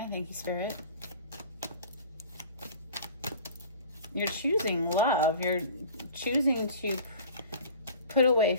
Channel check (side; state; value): both; inverted; correlation -0.43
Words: Thank you, Spirit. You're choosing love. You're choosing to put away